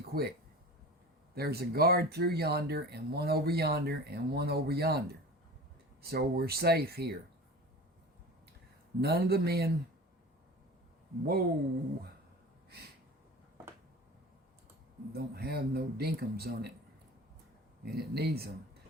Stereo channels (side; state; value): both; normal; correlation 0.36